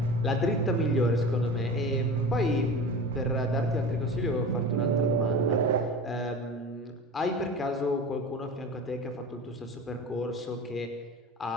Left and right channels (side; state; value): both; normal; correlation 0.33